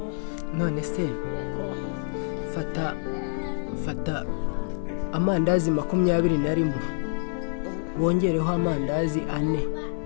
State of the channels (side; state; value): right; silent; digital silence